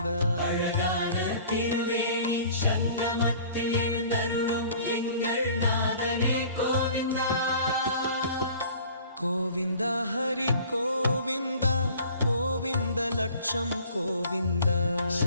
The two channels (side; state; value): both; inverted; correlation -0.48